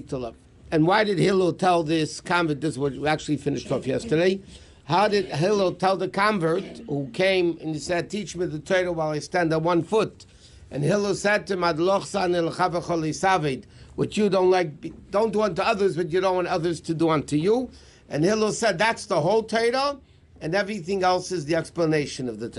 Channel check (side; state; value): both; identical; correlation 1.00